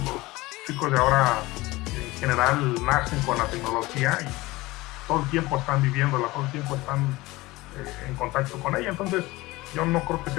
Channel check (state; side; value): quieter; right; 20.2 dB